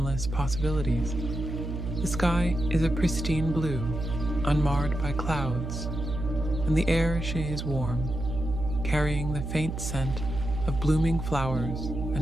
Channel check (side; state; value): right; noise; hum, 5 dB below the sound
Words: possibilities. The sky is a pristine blue, unmarred by clouds, and the air stays warm, carrying the faint scent of blooming flowers